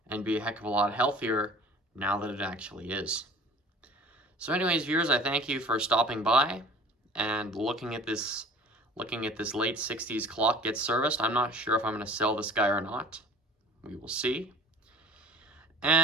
and be a heck of a lot healthier now that it actually is. So anyways, viewers, I thank you for stopping by and looking at this late 60s clock get serviced. I'm not sure if I'm going to sell this guy or not. We will see.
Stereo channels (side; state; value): both; normal; correlation 0.45